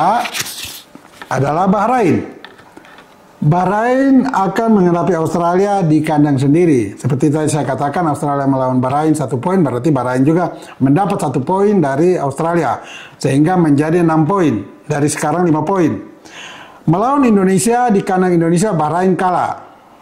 adalah Bahrain. Bahrain akan menghadapi Australia di kandang sendiri. Seperti tadi saya katakan, Australia melawan Bahrain 1 poin, berarti Bahrain juga mendapat 1 poin dari Australia. Sehingga menjadi 6 poin, dari sekarang 5 poin. Melawan Indonesia di kandang Indonesia, Bahrain kalah.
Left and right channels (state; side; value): identical; both; correlation 1.00